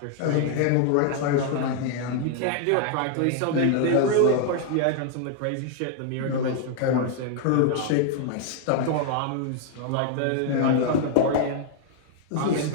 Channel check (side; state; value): both; different; correlation 0.00